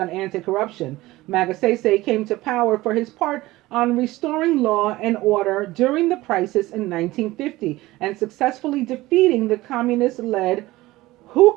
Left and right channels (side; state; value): left; quieter; 18.4 dB